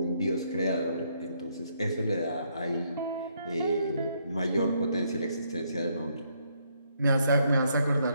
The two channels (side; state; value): both; inverted; correlation -0.73